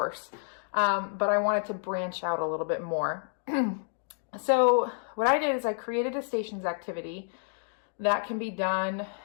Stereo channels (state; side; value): silent; right; digital silence